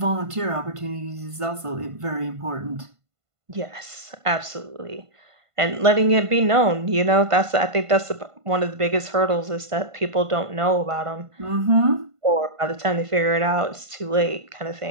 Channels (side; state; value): left; late; 1.5 ms